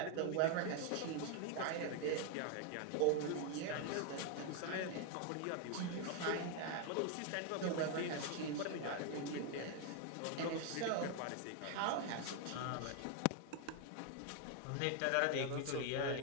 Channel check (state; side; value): different; both; correlation 0.00